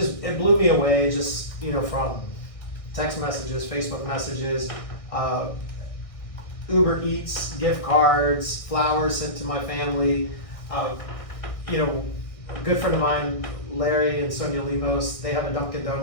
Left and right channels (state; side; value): late; right; 1.6 ms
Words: blew me away, just from text messages, Facebook messages, Uber Eats, gift cards, flowers sent to my family. A good friend of mine, Larry and Sonia Limos, they have a Dunkin'